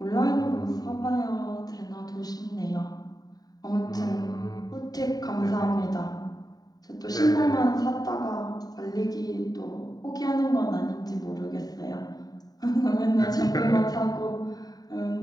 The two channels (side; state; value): right; late; 0.18 ms